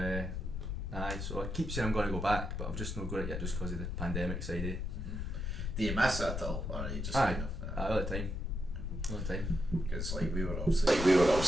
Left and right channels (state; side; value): noise; left; rumble, 3 dB below the sound